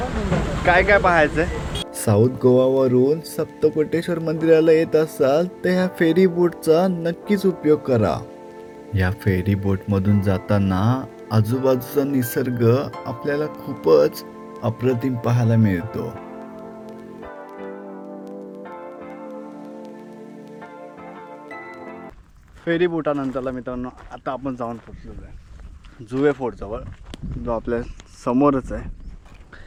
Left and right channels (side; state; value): both; identical; correlation 1.00